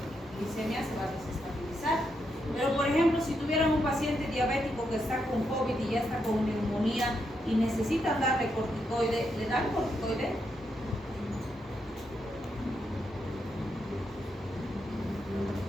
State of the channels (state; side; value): normal; both; correlation 0.81